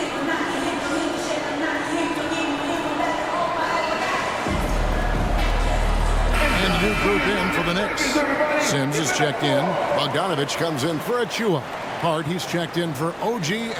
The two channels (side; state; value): both; identical; correlation 1.00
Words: New group in for the Knicks. Sims is checked in. Bogdanovich comes in for Achua. Hart, he's checked in for OG